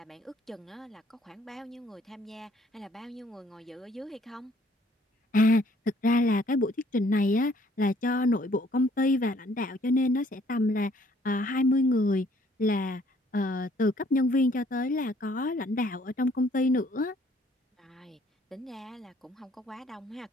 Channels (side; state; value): both; normal; correlation 0.62